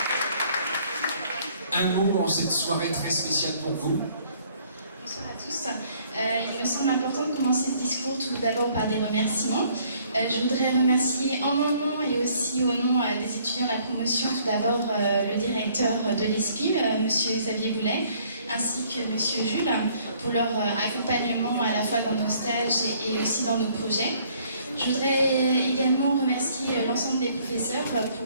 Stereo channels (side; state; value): both; inverted; correlation -0.62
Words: un mot en cette soirée très spéciale pour vous. Bonsoir à tous. Il me semble important de commencer ce discours tout d'abord par des remerciements. Je voudrais remercier en mon nom et aussi au nom des étudiants de la promotion, tout d'abord le directeur de l'ESPIM, M. Xavier Boulet, ainsi que M. Jules, pour leur accompagnement à la fois dans nos stages et aussi dans nos projets. Je voudrais également remercier l'ensemble des professeurs